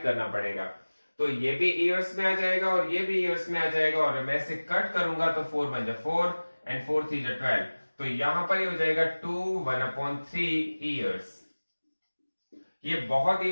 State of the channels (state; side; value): inverted; both; correlation -1.00